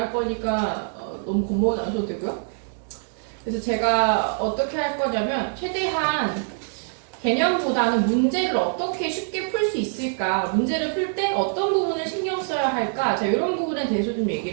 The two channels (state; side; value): silent; left; digital silence